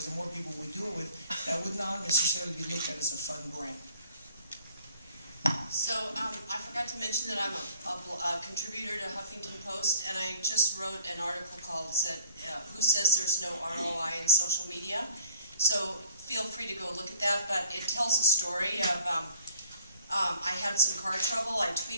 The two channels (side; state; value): both; inverted; correlation -0.54